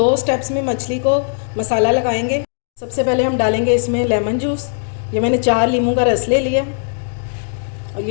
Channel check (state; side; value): silent; right; digital silence